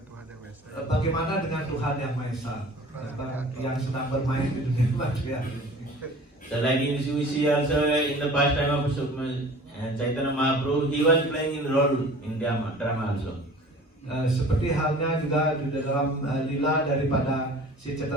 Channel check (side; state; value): both; normal; correlation 0.44